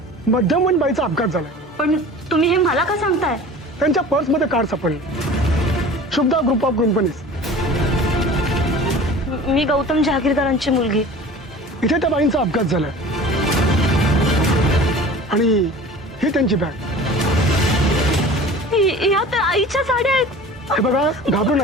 मध्यमवयीन बाईचा अपघात झालाय. पण तुम्ही हे मला का सांगताय? त्यांच्या पर्समध्ये कार सापडली. Shubhada group of companies. मी गौतम जहागीरदारांची मुलगी. इथे त्या बाईंचा अपघात झालाय आणि ही त्यांची बॅग. या तर आईच्या साड्या आहेत. हे बघा, घाबरू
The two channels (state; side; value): normal; both; correlation 0.41